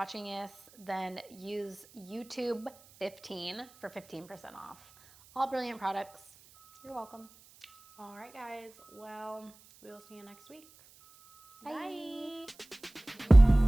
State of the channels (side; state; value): right; noise; hiss, 26 dB below the sound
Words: this, then use YouTube 15 for 15% off all Brilliant products. You're welcome. All right, guys. Well, we will see you next week. Bye. Bye.